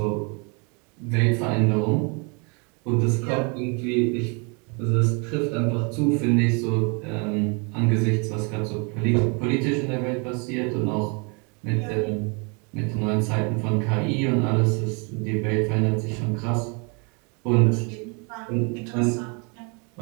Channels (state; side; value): quieter; left; 34.1 dB